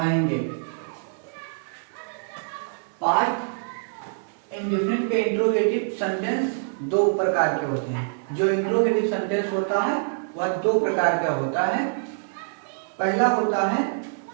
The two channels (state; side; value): silent; left; digital silence